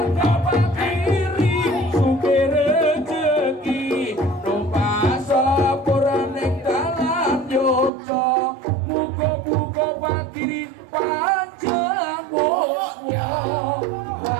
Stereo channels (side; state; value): left; drops out; at 7.9 s